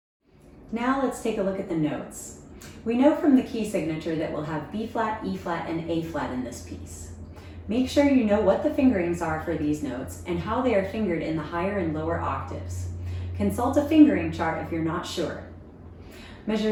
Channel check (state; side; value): identical; both; correlation 1.00